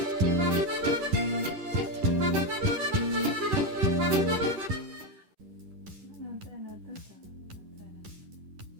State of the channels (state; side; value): late; left; 10 ms